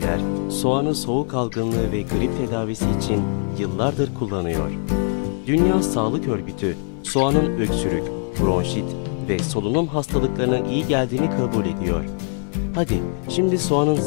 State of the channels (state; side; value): silent; right; 55 dB below the other